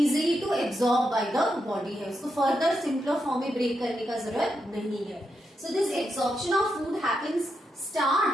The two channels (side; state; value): both; normal; correlation 0.84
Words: to absorb by the body है, उसको फर्दर सिंपलर फॉर्म में ब्रेक करने का जरूरत नहीं है। So this absorption of food happens